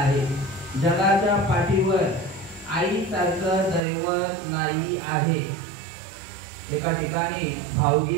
जगाच्या पाठीवर आईसारखं दैवत नाही आहे एका ठिकाणी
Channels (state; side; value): drops out; left; at 3.8 s